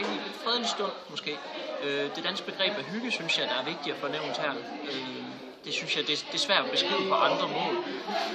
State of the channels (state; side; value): identical; both; correlation 1.00